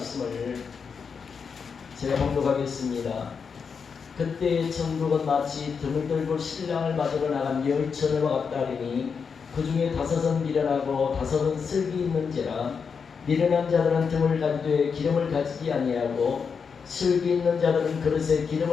제가 봉독하겠습니다. 그때 천국은 마치 등을 들고 신랑을 맞으러 나간 열처녀와 같다 하리니 그 중에 5은 미련하고 5은 슬기 있는지라. 미련한 자들은 등을 가지되 기름을 가지지 아니하고 슬기 있는 자들은 그릇에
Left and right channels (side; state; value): right; quieter; 5.9 dB